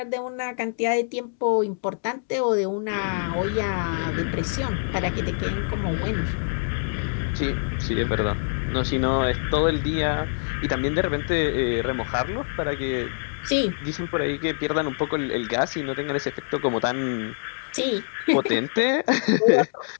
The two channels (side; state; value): right; silent; digital silence